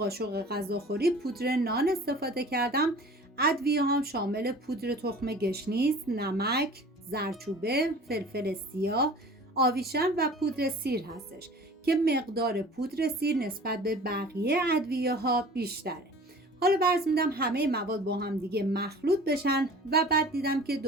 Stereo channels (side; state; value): both; normal; correlation 0.44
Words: غذاخوری پودر نان استفاده کردم. ادویه هم شامل پودر تخم گشنیز، نمک، زردچوبه، فلفل سیاه، آویشن و پودر سیر هستش که مقدار پودر سیر نسبت به بقیه ادویه ها بیشتره. حالا فرض میدم همه مواد با هم دیگه مخلوط بشن و بعد دیدم که